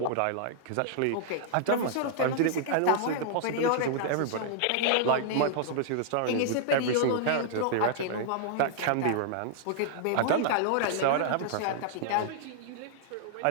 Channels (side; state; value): both; different; correlation -0.01